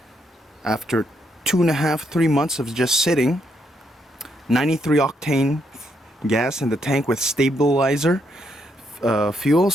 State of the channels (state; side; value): normal; both; correlation 0.76